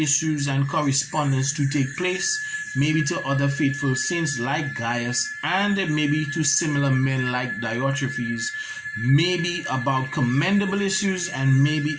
and correspondence to take place, maybe to other faithful saints like Gaius, and maybe to similar men like Diotrephes, maybe about commendable issues and maybe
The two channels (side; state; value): both; identical; correlation 1.00